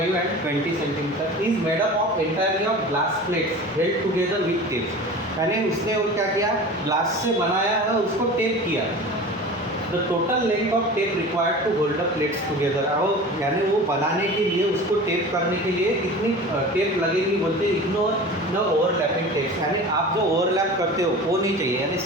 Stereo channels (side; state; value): both; normal; correlation 0.36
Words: and 20 centimetre is made up of entirely of glass plates held together with tape. यानी उसने वो क्या किया? ग्लास से बनाया है, उसको टेप किया। The total length of tape required to hold the plates together. और यानी वो बनाने के लिए, उसको टेप करने के लिए कितनी टेप लगेगी बोलते? इग्नोर द ओवरलैपिंग टेप्स, यानी आप जो ओवरलैप करते हो वो नहीं चाहिए, यानी